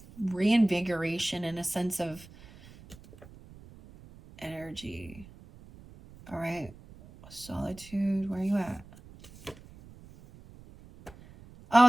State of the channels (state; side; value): noise; right; rumble, 20 dB below the sound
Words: reinvigoration and a sense of energy. All right. Solitude. Where are you at?